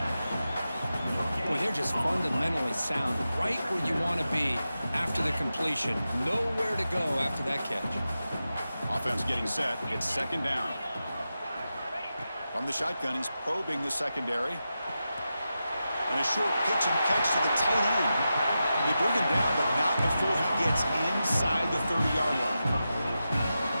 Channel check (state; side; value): inverted; both; correlation -0.91